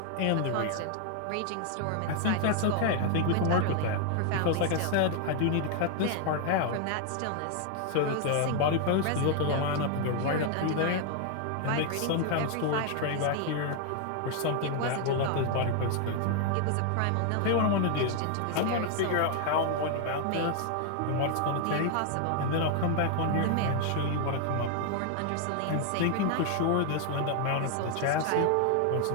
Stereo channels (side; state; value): both; different; correlation 0.00